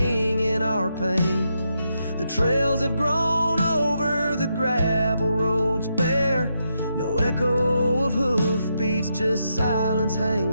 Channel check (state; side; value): inverted; both; correlation -0.82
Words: our pain. The trails have grown over the gravel roads bare. No echo of hoofbeats, just silence